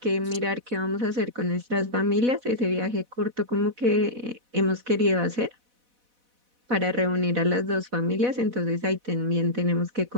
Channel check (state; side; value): late; left; 4.1 ms